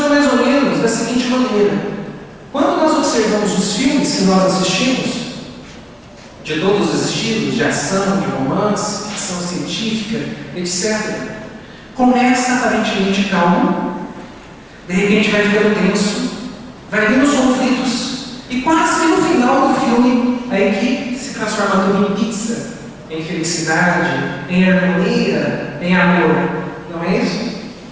mais ou menos da seguinte maneira: quando nós observamos os filmes que nós assistimos, de todos os estilos, de ação, de romance, ficção científica, etc., começa aparentemente calmo, de repente vai ficando tenso, vai vindo os conflitos, e quase no final do filme, a equipe se transforma tudo em pizza, em felicidade, em harmonia, em amor. Não é isso?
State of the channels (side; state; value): both; identical; correlation 1.00